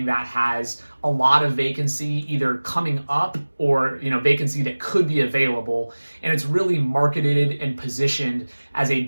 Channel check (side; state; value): both; inverted; correlation -1.00